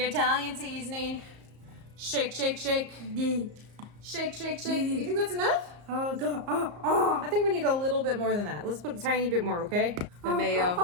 Italian seasoning. Shake, shake, shake. Shake, shake, shake. You think that's enough? I think we need a little bit more than that. Let's put a tiny bit more, okay? The mayo.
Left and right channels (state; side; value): late; left; 34 ms